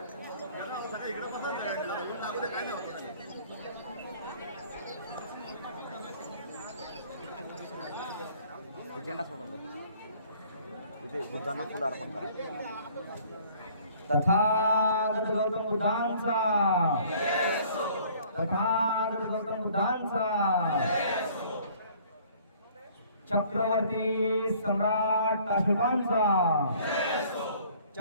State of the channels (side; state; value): both; inverted; correlation -0.55